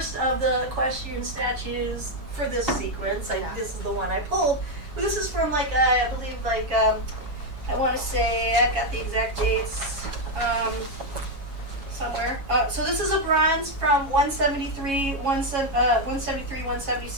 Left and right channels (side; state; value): left; late; 7.2 ms